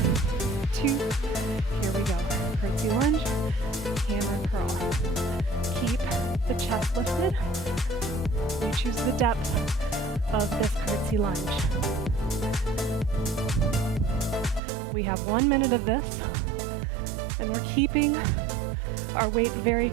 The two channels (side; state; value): left; drops out; at 14.6 s